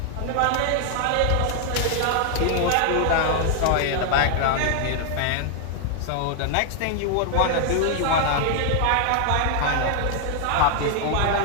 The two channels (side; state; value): both; different; correlation 0.00